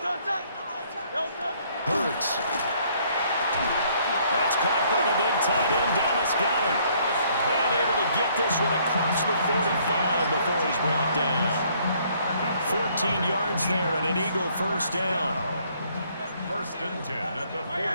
Hurts. That's caught by the big tight end, Dallas Goedert. And able to get this one across the 45 before he's brought down. 14 yards there and an Eagle first down. First and 10 at the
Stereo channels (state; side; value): inverted; both; correlation -0.64